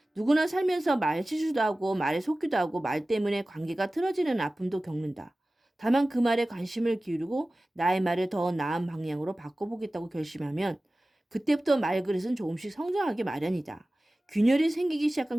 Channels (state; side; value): normal; both; correlation 0.97